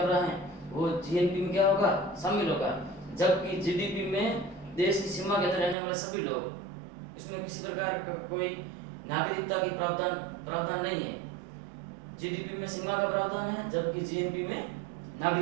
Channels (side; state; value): left; drops out; at 5.8 s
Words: रहा है, वो जीएनपी में क्या होगा, शामिल होगा। जबकि जीडीपी में देश की सीमा के अंदर रहने वाले सभी लोग, इसमें किसी प्रकार का कोई नागरिकता की प्रावधान नहीं है। जीडीपी में सीमा का प्रावधान है, जबकि जीएनपी में